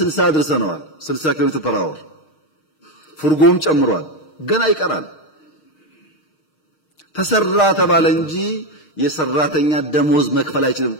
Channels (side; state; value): right; late; 6.4 ms